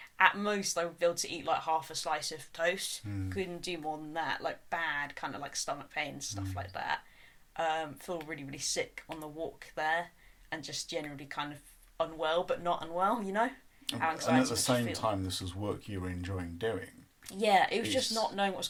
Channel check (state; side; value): identical; both; correlation 1.00